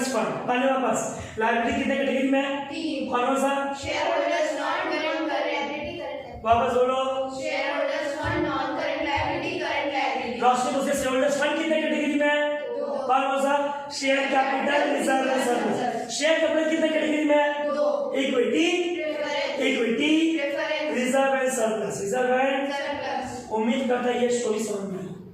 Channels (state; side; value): identical; both; correlation 1.00